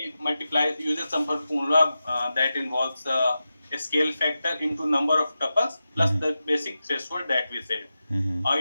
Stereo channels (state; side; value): inverted; both; correlation -0.92